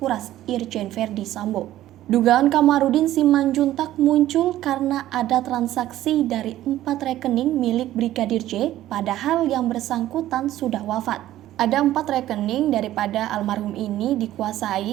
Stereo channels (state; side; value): quieter; left; 13.9 dB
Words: Irjen Verdi Sambo. Dugaan Kamarudin Simanjuntak muncul karena ada transaksi dari 4 rekening milik Brigadir J, padahal yang bersangkutan sudah wafat. Ada 4 rekening daripada almarhum ini